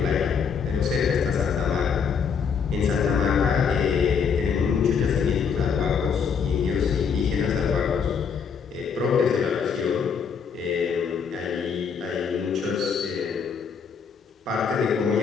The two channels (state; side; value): quieter; right; 6.4 dB